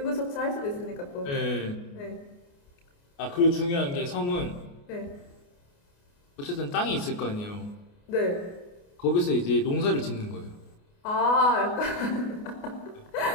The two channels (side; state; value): right; late; 29 ms